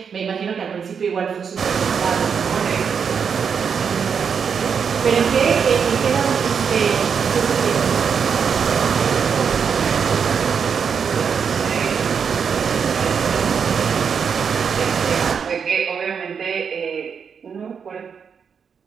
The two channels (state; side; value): quieter; left; 6.6 dB